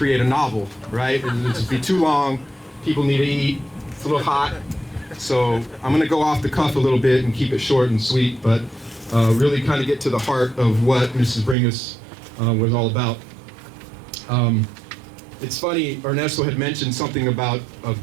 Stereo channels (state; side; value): drops out; left; at 11.6 s